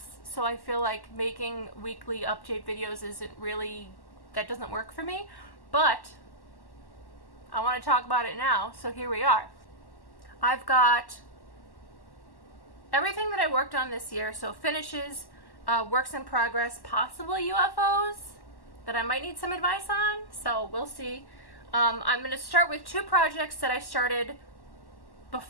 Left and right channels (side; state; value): right; late; 1.1 ms